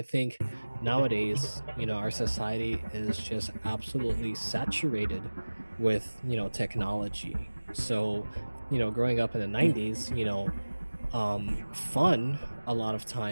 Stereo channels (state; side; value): inverted; both; correlation -1.00